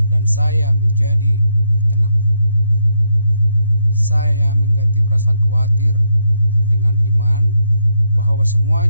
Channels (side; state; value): both; inverted; correlation -0.78